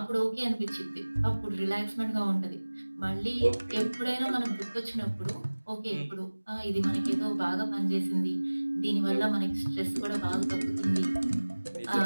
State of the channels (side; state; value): both; inverted; correlation -1.00